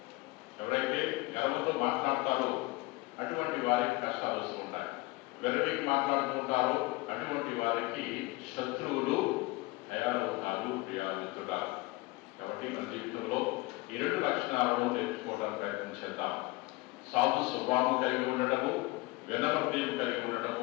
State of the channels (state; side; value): quieter; right; 22.4 dB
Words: ఎవరైతే గర్వంతో మాట్లాడతారో అటువంటి వారికి కష్టాలు వస్తూ ఉంటాయి. వెరవికి మాట్లాడుతూ ఉంటారో అటువంటి వారికి శత్రువులు తయారవుతారు. ప్రియామిత్రుడా, కాబట్టి మన జీవితంలో ఈ 2 లక్షణాలను నేర్చుకోవడానికి ప్రయత్నం చేద్దాం. సాధు స్వభావం కలిగి ఉండటము, వినమ్రతను కలిగి